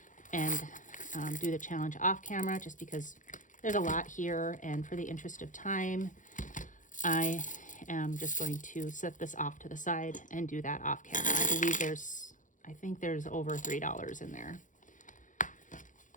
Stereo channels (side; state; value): right; late; 0.37 ms